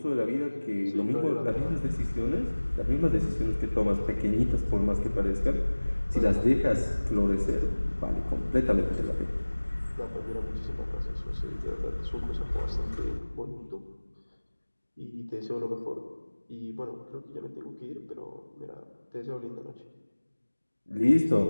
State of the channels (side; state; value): both; inverted; correlation -1.00